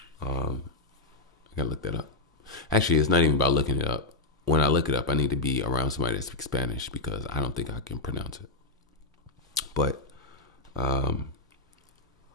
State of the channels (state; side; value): quieter; right; 3.2 dB